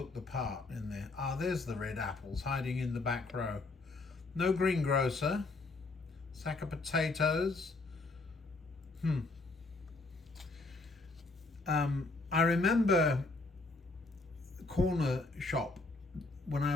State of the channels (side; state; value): right; quieter; 3.4 dB